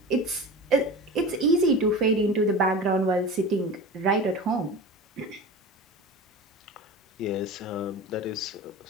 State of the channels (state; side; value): normal; both; correlation 0.32